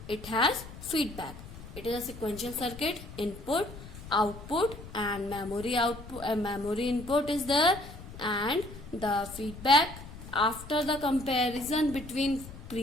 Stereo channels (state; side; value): noise; left; rumble, 14 dB below the sound